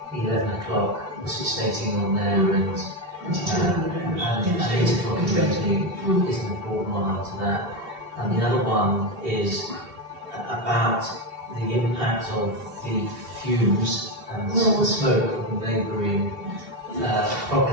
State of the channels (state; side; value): late; left; 2.7 ms